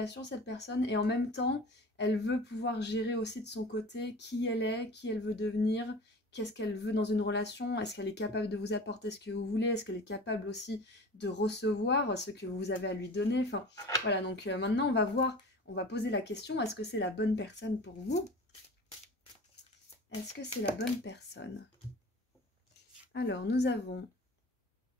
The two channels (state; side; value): normal; both; correlation 0.38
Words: cette personne, et en même temps, elle veut pouvoir gérer aussi de son côté qui elle est, qui elle veut devenir, qu'est-ce qu'elle veut dans une relation, est-ce qu'elle est capable de vous apporter ce que vous voulez, est-ce qu'elle est capable aussi de recevoir ce que vous avez à lui donner. Enfin, voilà, donc maintenant, on va voir, on va poser la question, est-ce que c'est la bonne personne pour vous? Est-ce que c'est la bonne personne? Alors, nous avons